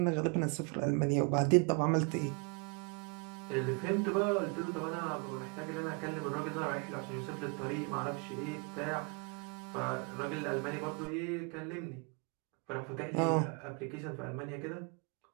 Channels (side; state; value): left; quieter; 33.2 dB